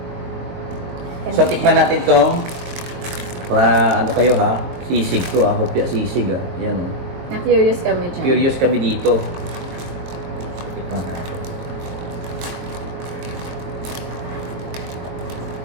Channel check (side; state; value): left; late; 22 ms